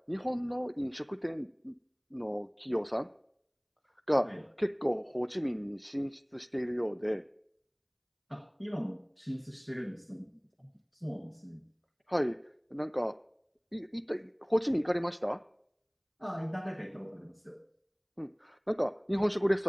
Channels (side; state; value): both; identical; correlation 1.00